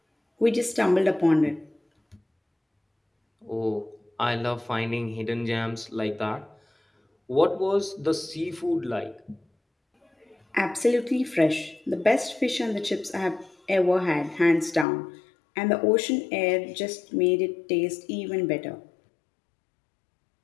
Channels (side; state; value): right; drops out; at 14.9 s